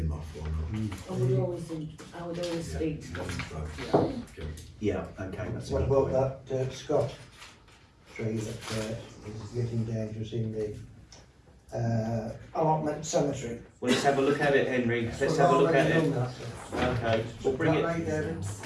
off or not? I would always speak. Right. Okay. Yeah, okay, that's a What good about point. that Scott tree that is getting dangerous in the allotment cemetery? Well, let's have a look at it, Henry. Let's have a look at it. Okay, we'll bring it. Right, David?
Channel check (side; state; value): both; identical; correlation 1.00